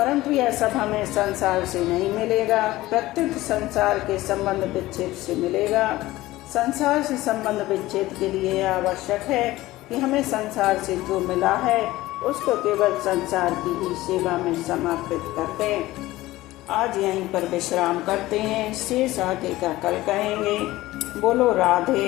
यह सब हमें संसार से नहीं मिलेगा, प्रत्युत संसार के संबंध विच्छेद से मिलेगा। संसार से संबंध विच्छेद के लिए आवश्यक है कि हमें संसार से जो मिला है उसको केवल संसार की ही सेवा में समर्पित कर दें। आज यहीं पर विश्राम करते हैं, शेष आगे का कल कहेंगे। बोलो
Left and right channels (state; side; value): quieter; right; 17.4 dB